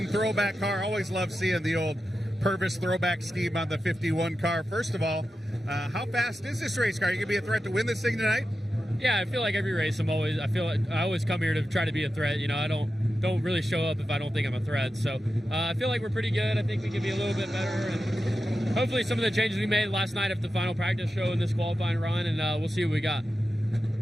throwback car. Always love seeing the old Purvis throwback scheme on the 51 car. First of all, how fast is this race car? Are you going to be a threat to win this thing tonight? Yeah, I feel like every race I feel like I always come here to try to be a threat. You know, I don't really show up if I don't think I'm a threat. So I feel like we're pretty good. I think we can be a little bit better, and hopefully some of the changes we made last night after the final practice show in this qualifying run, and we'll see what we got.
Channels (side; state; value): both; normal; correlation 0.91